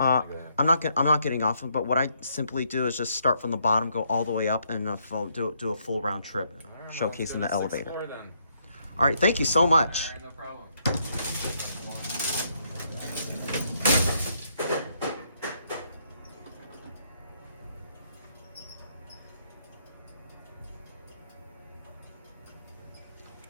not getting off, but what I simply do is just start from the bottom, go all the way up, and do a full round trip, Right, showcasing the elevator. Floor, then. All right, thank you so much. All right, no problem.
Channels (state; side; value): inverted; both; correlation -0.74